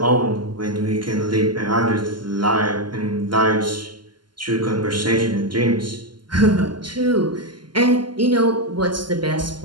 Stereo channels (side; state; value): left; late; 0.71 ms